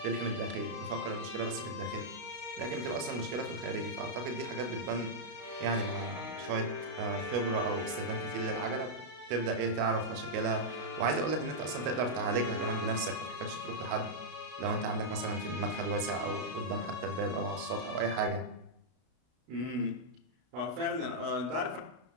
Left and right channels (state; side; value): late; left; 32 ms